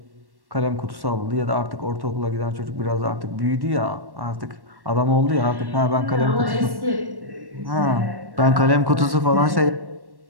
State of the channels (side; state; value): left; late; 1.1 ms